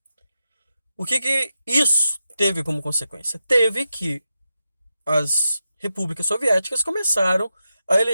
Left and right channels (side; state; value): both; inverted; correlation -0.89